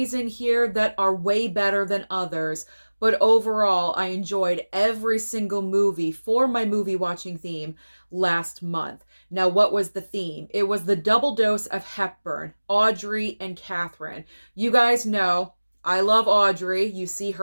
in here that are way better than others, but overall, I enjoyed every single movie for my movie watching theme last month. Now, what was the theme? It was the double dose of Hepburn, Audrey, and Katharine. You guys know I love Audrey. You see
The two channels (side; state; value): both; inverted; correlation -1.00